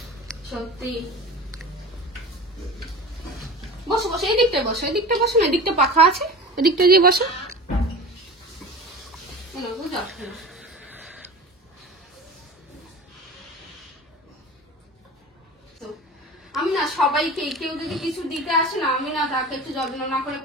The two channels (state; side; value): normal; both; correlation 0.33